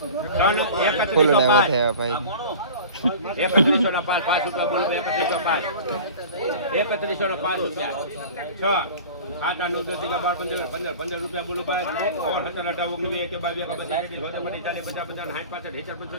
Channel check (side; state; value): both; inverted; correlation -0.38